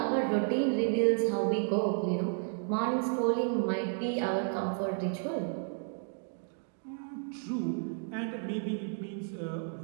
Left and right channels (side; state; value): left; silent; 56 dB below the other